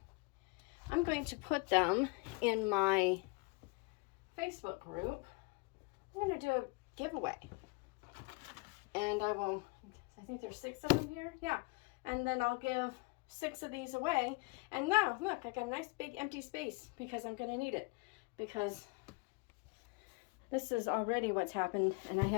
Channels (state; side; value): quieter; right; 28.9 dB